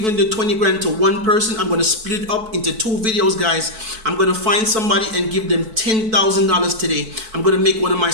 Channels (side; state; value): left; late; 4.6 ms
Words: the 20 grand to one person. I'm gonna split it up into two videos, guys. I'm gonna find somebody and give them $10,000 today. I'm gonna make one of my